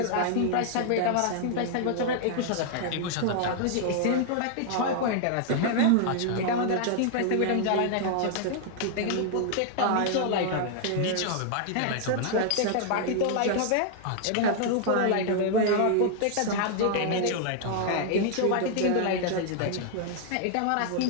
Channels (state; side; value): different; both; correlation 0.00